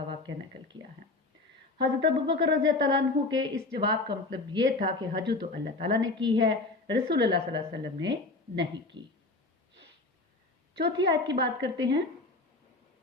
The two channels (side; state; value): right; quieter; 3.2 dB